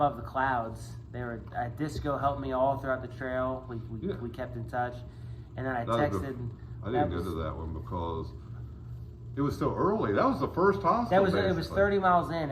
the Clouds. They were Disco helped me all throughout the trail. We kept in touch, and then I texted. I didn't go to that one because it was so early. That was the first hostel. It was 30 miles in,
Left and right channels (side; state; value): both; identical; correlation 1.00